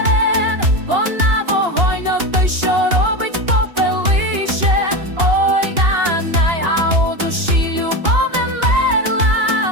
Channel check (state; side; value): late; left; 2.8 ms